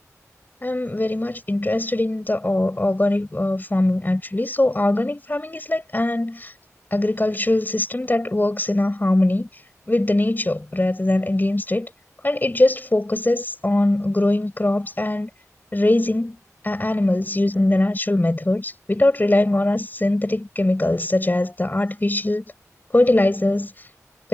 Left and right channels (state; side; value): normal; both; correlation 0.94